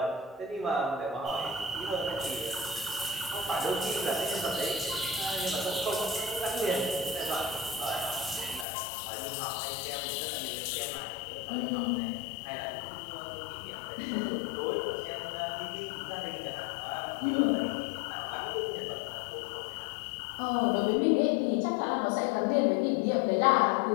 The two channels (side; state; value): right; drops out; at 8.7 s